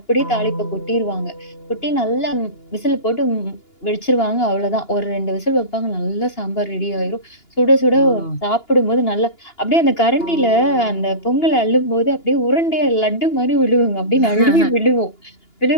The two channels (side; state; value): right; late; 2.9 ms